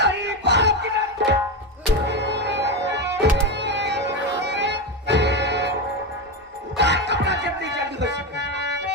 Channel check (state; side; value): normal; both; correlation 0.14